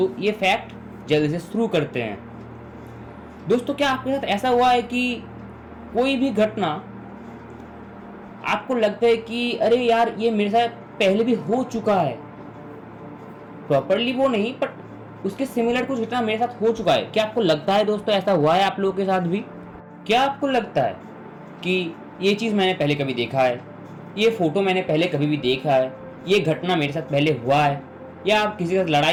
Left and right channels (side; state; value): both; identical; correlation 1.00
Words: ये फैक्ट जल्दी से शुरू करते हैं। दोस्तों, क्या आपके साथ ऐसा हुआ है कि कोई भी घटना आपको लगता है कि अरे यार ये मेरे साथ पहले भी हो चुका है, प्रॉपरली वो नहीं बट उसके सिमिलर कुछ घटना मेरे साथ हो चुका है? क्या आपको लगता है दोस्तों ऐसा हुआ है आप लोगों के साथ भी? क्या आपको लगता है कि ये चीज़ मैंने पहले कभी देखा है, ये फोटो मैंने पहले कभी भी देखा है, ये घटना मेरे साथ पहले हुआ है? या आप किसी के साथ